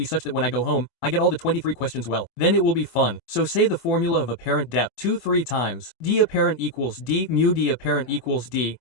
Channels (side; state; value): right; late; 24 ms